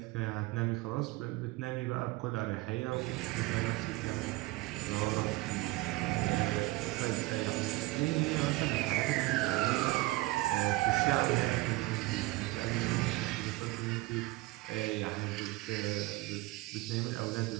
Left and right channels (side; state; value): left; quieter; 20.3 dB